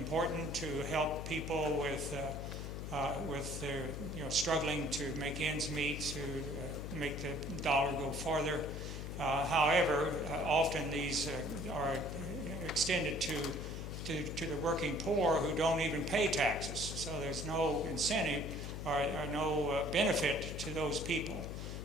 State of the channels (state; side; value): noise; left; hum, 6 dB below the sound